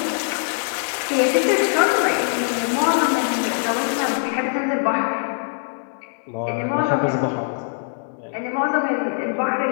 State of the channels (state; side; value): silent; right; 64 dB below the other